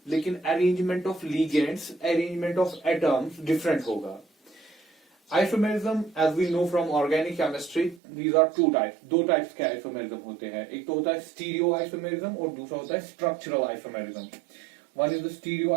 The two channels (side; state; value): left; drops out; at 8.0 s